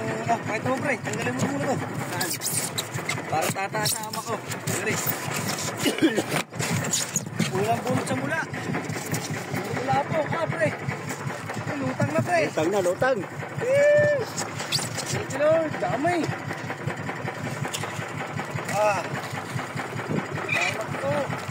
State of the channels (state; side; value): identical; both; correlation 1.00